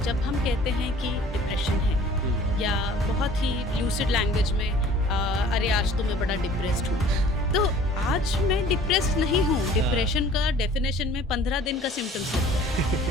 जब हम कहते हैं कि depression है या बहुत ही lucid language में अरे आज तो मैं बड़ा डिप्रेस्ड हूँ, तो आज मैं डिप्रेस्ड नहीं हूँ. डिप्रेशन का डेफिनेशन में 15 दिन का सिम्टम्स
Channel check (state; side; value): normal; both; correlation 0.50